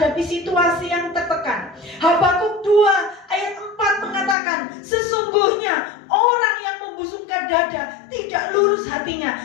situasi yang tertekan. Habakuk 2 ayat 4 mengatakan, sesungguhnya orang yang membusungkan dada tidak lurus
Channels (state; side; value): drops out; right; at 4.4 s